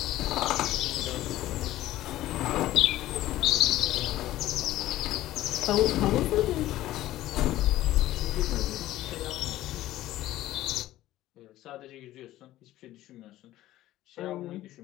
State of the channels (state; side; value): quieter; right; 15.0 dB